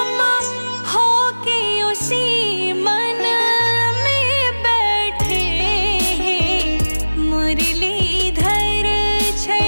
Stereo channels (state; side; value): inverted; both; correlation -1.00